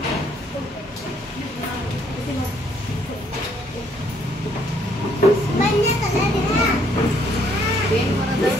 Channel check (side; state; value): both; normal; correlation 0.67